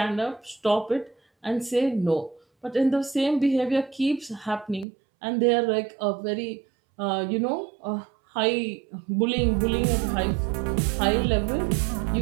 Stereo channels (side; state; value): left; drops out; at 4.9 s